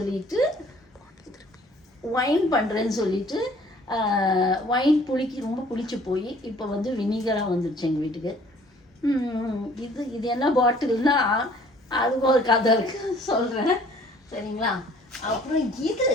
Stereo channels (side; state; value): both; normal; correlation 0.55